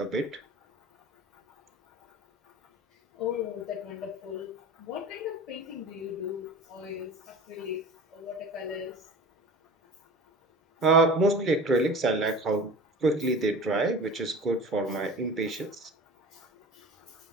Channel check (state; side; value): normal; both; correlation 0.37